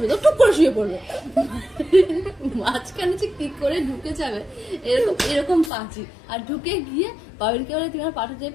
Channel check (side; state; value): right; drops out; at 5.7 s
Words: তো টুক করে শুয়ে পড়বে মাঝখানে যে কি করে ঢুকে যাবে এরকম পাঁচি আর ঢুকে গিয়ে বাবিনকে বলে তুমি আমার পাটা